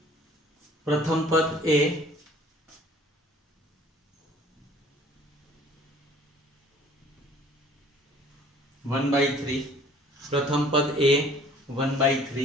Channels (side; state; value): both; normal; correlation 0.53